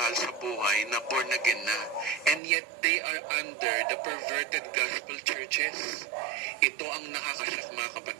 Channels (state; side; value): drops out; left; at 2.4 s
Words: sa buhay na born again na. And yet, they are under the perverted gospel churches. Ito ang nakakasyak mga